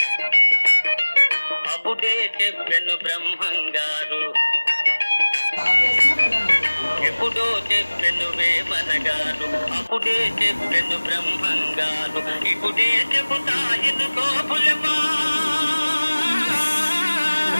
అప్పుడే చెప్పెను బ్రహ్మంగారు. ఎప్పుడో చెప్పెను వేమనగారు, అప్పుడే చెప్పెను బ్రహ్మంగారు. ఇప్పుడే చెబుతాయిను గోపులమా,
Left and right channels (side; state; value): both; inverted; correlation -1.00